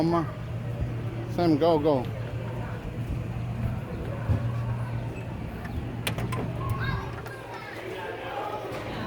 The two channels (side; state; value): both; identical; correlation 1.00